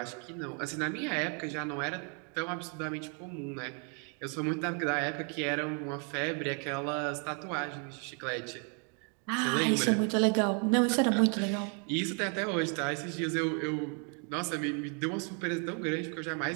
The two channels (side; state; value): left; quieter; 39.5 dB